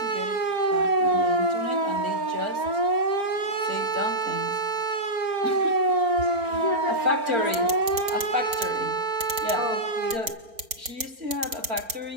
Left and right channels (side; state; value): left; late; 4.4 ms